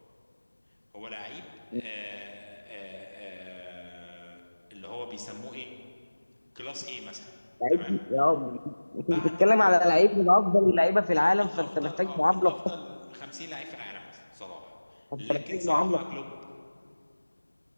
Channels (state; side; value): inverted; both; correlation -1.00